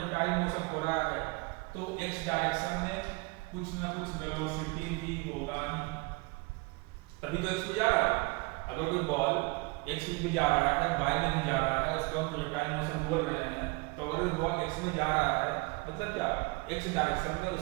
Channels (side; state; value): left; quieter; 27.0 dB